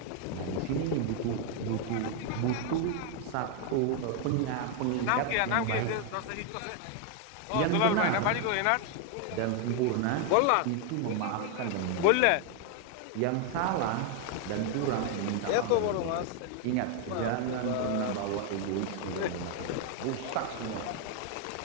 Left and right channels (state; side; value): different; both; correlation 0.01